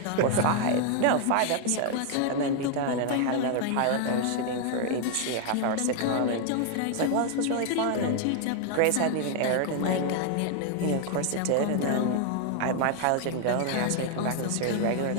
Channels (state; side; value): different; both; correlation 0.00